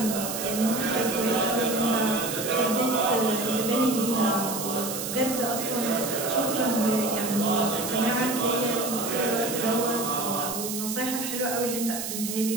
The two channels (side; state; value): right; noise; hiss, 5 dB below the sound